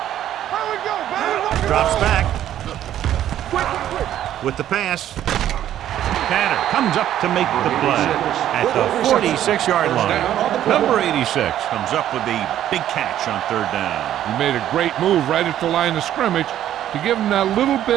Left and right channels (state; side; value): quieter; left; 11.6 dB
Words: Here we go, baby. Drops back. With the pass. Tanner comes up to make the play at the 46-yard line. Number 86 comes up with the big catch on 3rd down. He made a great move right at the line of scrimmage to give him that little